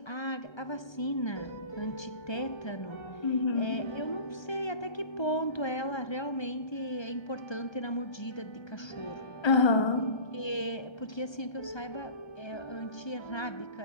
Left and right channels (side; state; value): right; late; 1.3 ms